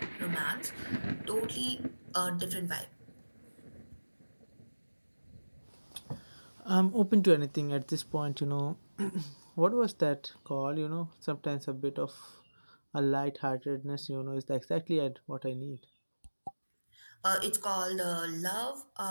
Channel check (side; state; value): both; inverted; correlation -1.00